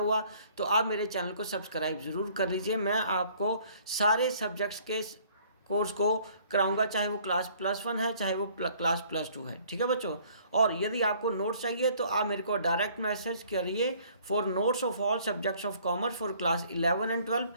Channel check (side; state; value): both; inverted; correlation -0.58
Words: तो आप मेरे चैनल को सब्सक्राइब ज़रूर कर लीजिए। मैं आपको सारे सब्जेक्ट्स के कोर्स को कराऊंगा, चाहे वो क्लास +1 है चाहे वो क्लास +2 है। ठीक है बच्चों, और यदि आपको नोट्स चाहिए तो आप मेरे को डायरेक्ट मैसेज करिए for notes of all subjects of commerce for class 11 and 12।